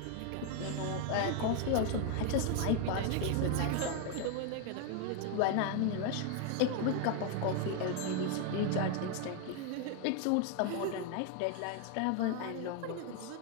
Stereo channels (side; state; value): both; different; correlation 0.01